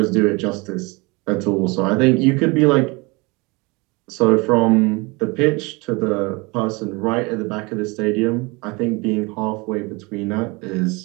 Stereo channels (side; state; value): left; quieter; 26.5 dB